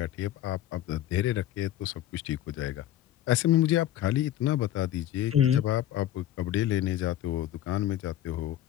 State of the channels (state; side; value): quieter; right; 12.4 dB